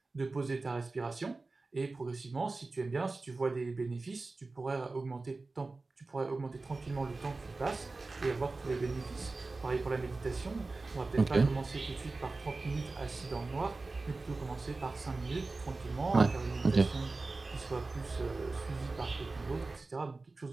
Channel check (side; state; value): left; quieter; 3.5 dB